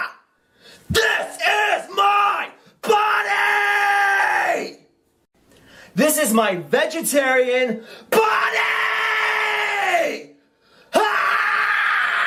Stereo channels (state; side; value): identical; both; correlation 1.00